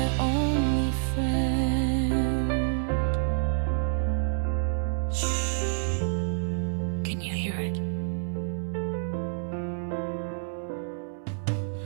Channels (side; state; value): left; silent; 59 dB below the other